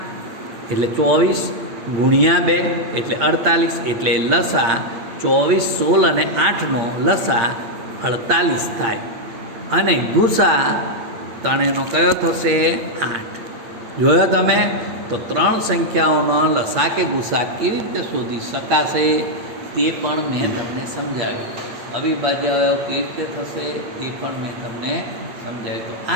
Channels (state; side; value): late; left; 8.6 ms